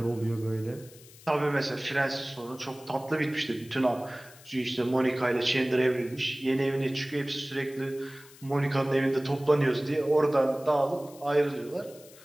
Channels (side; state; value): left; noise; hiss, 22 dB below the sound